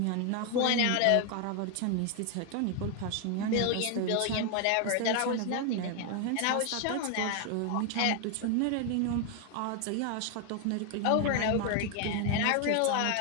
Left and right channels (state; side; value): different; both; correlation 0.00